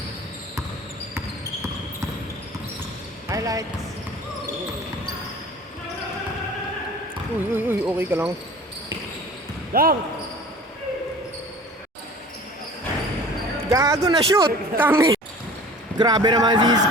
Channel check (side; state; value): both; normal; correlation 0.43